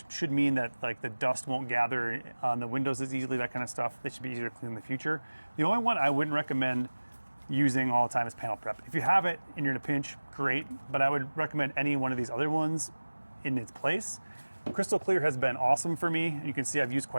should mean that like the dust won't gather on the windows as easily, that kind of stuff. They should be easier to clean in the future. The only one I wouldn't recommend using all the time is panel prep. If you have it and you're in a pinch, great, but I would recommend any one of these other ones in its place. Crystal Clear has been awesome for me. You can see I've used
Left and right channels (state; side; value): inverted; both; correlation -1.00